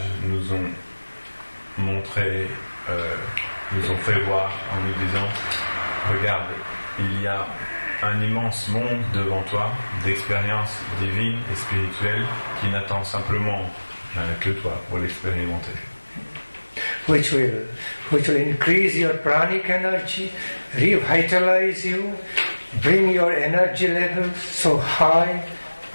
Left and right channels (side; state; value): both; inverted; correlation -1.00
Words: nous ont montré, nous ont fait voir en nous disant, regarde, il y a un immense monde devant toi d'expériences divines et spirituelles qui n'attend simplement que toi pour l'expérimenter. Which will increase your pranic energy, revitalize you, bring your energy level so high,